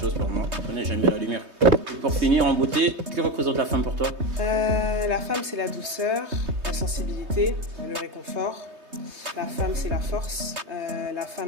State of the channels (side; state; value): left; late; 3.2 ms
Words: pour moi. On n'est jamais la lumière. Et pour finir en beauté, que représente la femme pour toi? La femme, c'est la douceur, la sensibilité, le réconfort. La femme, c'est la force. La femme,